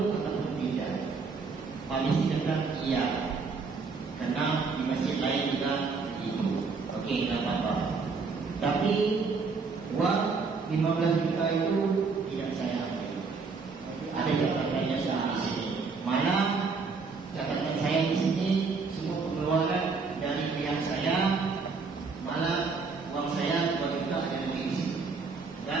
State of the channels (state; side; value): quieter; left; 4.6 dB